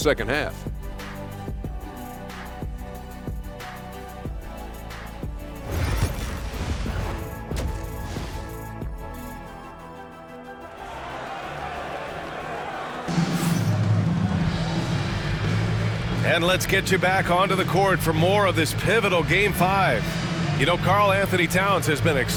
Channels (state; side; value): identical; both; correlation 1.00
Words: half. And let's get you back onto the court for more of this pivotal Game 5. You know, Karl Anthony Towns has been